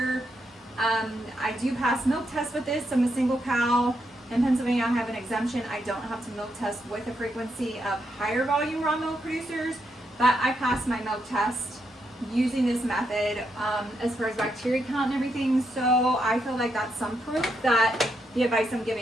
I do pass milk tests with this. I'm a single cow. In Pennsylvania, I have an exemption. I don't have to milk test with the frequency of higher volume raw milk producers, but I pass my milk test using this method as far as bacteria count and everything. So I feel like that's some proof that the advice I'm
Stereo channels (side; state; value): both; normal; correlation 0.81